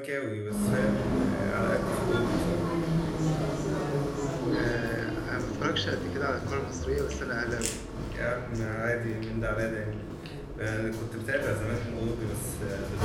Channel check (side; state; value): both; identical; correlation 1.00